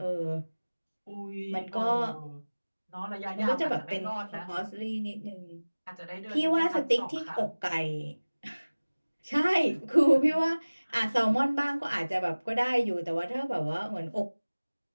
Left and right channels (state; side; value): inverted; both; correlation -1.00